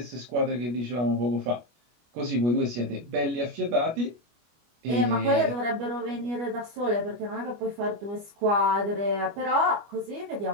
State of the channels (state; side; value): late; left; 25 ms